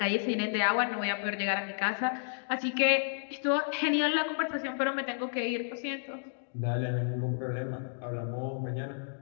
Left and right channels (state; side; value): silent; right; digital silence